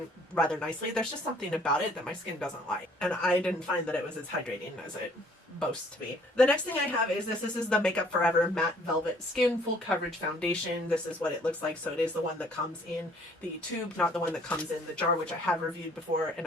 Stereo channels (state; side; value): normal; both; correlation 0.59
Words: rather nicely. There's just something about it that my skin doesn't like. And I didn't find that it was as hydrating as it boasts to be. The next thing I have is this. This is the Makeup Forever Matte Velvet Skin Full Coverage Foundation. This is what it looks like. So it is the one that comes in the tube, not the one that comes in the jar, which I have reviewed before, and